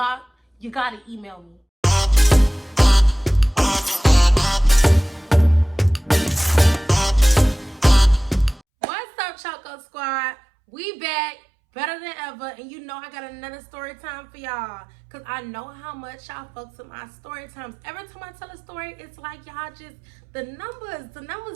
You gotta email me. What's up, Choco Squad? We back. Better than ever. And you know I got another story time for y'all. Because I know how much y'all fucks with my story times. Every time I tell a story, it's like y'all just, the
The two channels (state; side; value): drops out; left; at 8.6 s